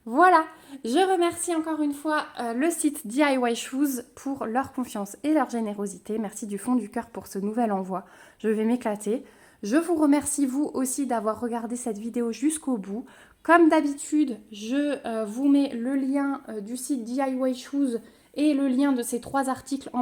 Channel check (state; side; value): identical; both; correlation 1.00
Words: Voilà, je remercie encore une fois le site DIY Shoes pour leur confiance et leur générosité. Merci du fond du cœur pour ce nouvel envoi. Je vais m'éclater. Je vous remercie vous aussi d'avoir regardé cette vidéo jusqu'au bout. Comme d'habitude, je vous mets le lien du site DIY Shoes et le lien de ces 3 articles en